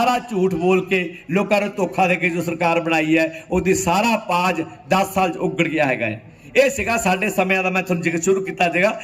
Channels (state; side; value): identical; both; correlation 1.00